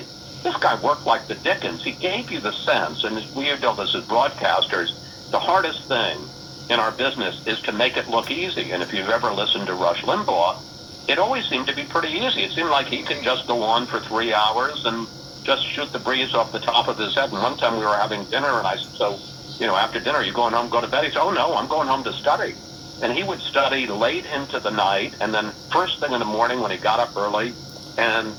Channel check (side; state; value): both; identical; correlation 1.00